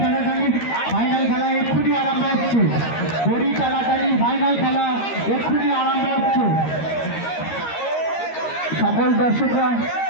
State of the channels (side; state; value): right; late; 13 ms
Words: ফাইনাল খেলা এক্ষুনি আরম্ভ হচ্ছে। দড়ি টানাটানি ফাইনাল খেলা এক্ষুনি আরম্ভ হচ্ছে। সকল দর্শকরা